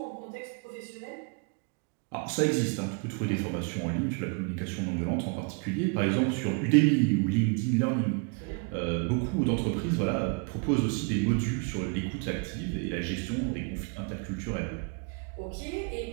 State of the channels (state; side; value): quieter; left; 34.9 dB